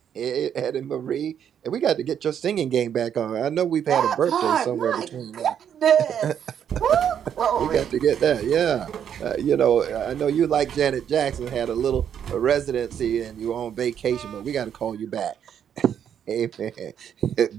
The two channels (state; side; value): quieter; left; 8.8 dB